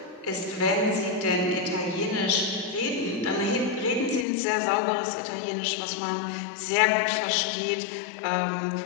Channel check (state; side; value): drops out; right; at 4.2 s